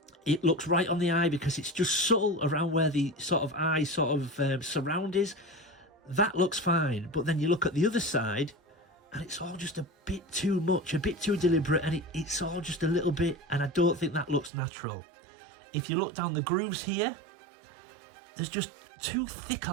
it looks right on the eye because it's just subtle around where the sort of eye sort of surround is. That looks fine. But then you look at the other side, and it's all just a bit too much, a bit too deliberate, and it's all just a little bit, and I don't think that looks natural. If you look down the grooves here, there's just too thick a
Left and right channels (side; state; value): left; drops out; at 14.5 s